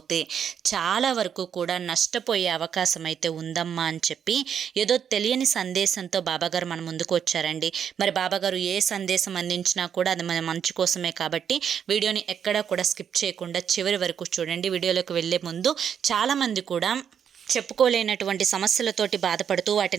చాలా వరకు కూడా నష్టపోయే అవకాశం అయితే ఉందమ్మా అని చెప్పి ఏదో తెలియని సందేశంతో బాబాగారు మన ముందుకు వచ్చారండి. మరి బాబాగారు ఏ సందేశం అందించినా కూడా అది మన మంచి కోసమే కాబట్టి వీడియోని ఎక్కడా కూడా స్కిప్ చేయకుండా చివరి వరకు చూడండి. వీడియోలోకి వెళ్ళే ముందు చాలామంది కూడా చెప్పుకోలేనటువంటి సమస్యలతోటి బాధపడుతూ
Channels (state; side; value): quieter; left; 8.1 dB